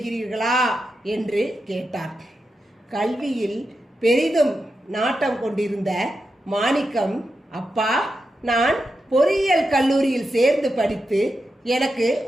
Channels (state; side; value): normal; both; correlation 0.88